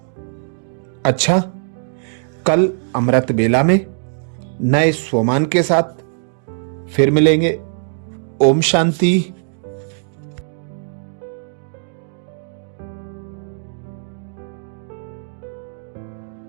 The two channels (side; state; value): left; silent; digital silence